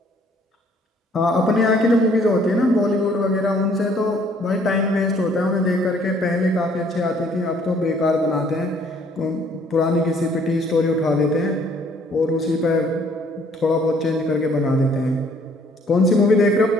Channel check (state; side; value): normal; both; correlation 0.61